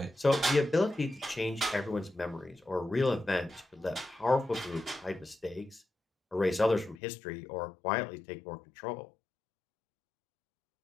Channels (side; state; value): right; drops out; at 7.0 s